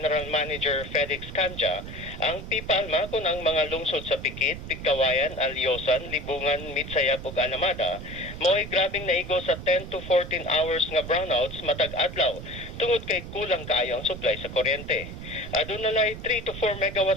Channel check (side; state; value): right; noise; rumble, 10 dB below the sound